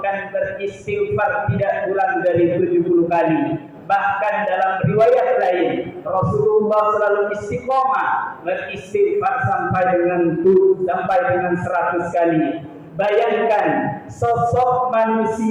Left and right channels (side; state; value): both; identical; correlation 1.00